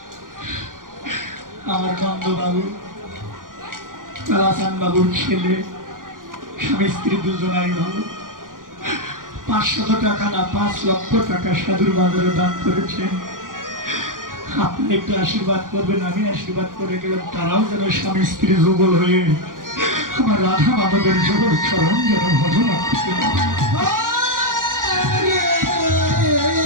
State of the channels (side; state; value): left; late; 0.90 ms